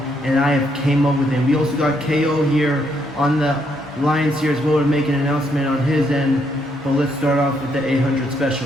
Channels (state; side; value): normal; both; correlation 0.74